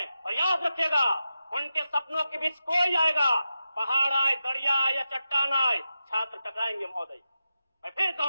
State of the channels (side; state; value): both; inverted; correlation -0.90